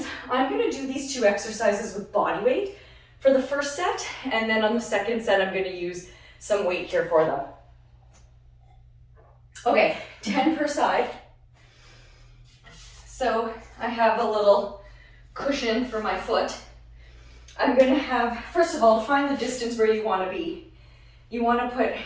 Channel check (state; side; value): identical; both; correlation 1.00